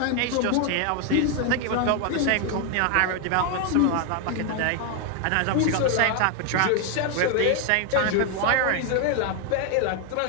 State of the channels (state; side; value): different; both; correlation 0.01